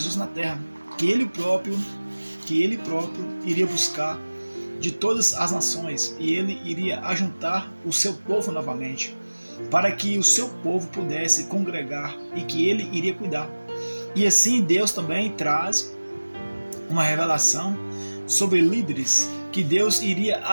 na terra, que ele próprio iria buscar de todas as nações e ele iria ajuntar o seu povo novamente, para que o seu povo pudesse congregar e que ele iria cuidar. E assim Deus também traz uma revelação sobre líderes que Deus iria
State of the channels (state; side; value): inverted; both; correlation -1.00